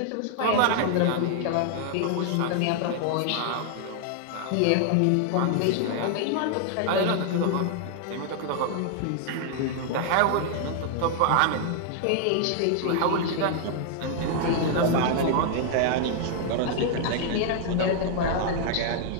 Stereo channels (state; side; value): different; both; correlation 0.00